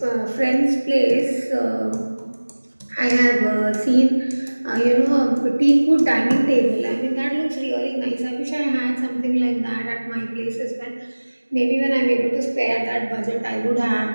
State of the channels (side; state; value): both; inverted; correlation -1.00